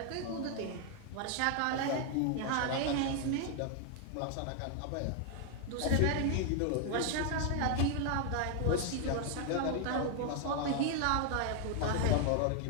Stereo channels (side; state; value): both; different; correlation 0.00